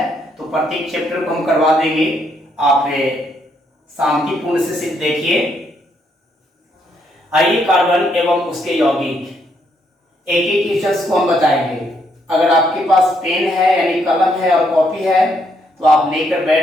तो प्रत्येक चैप्टर को हम करवा देंगे। आप शांतिपूर्ण से सिर्फ देखिए। आइए, कार्बन एवं उसके यौगिक एक एक क्वेश्चंस को हम बताएंगे। अगर आपके पास पेन है यानी कलम है और कॉपी है तो आप लेकर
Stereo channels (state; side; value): normal; both; correlation 0.73